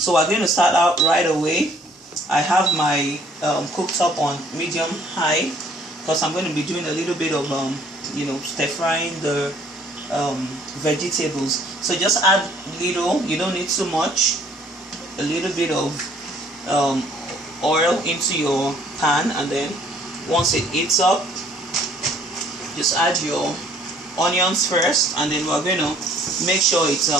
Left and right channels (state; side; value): normal; both; correlation 0.59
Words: we're going to start out right away. I have my cooktop on medium high because I'm going to be doing a little bit of stir frying the vegetables. So just add little, you don't need too much, a little bit of oil into your pan, and then once it heats up, just add your onions first, and then we're going to make sure it's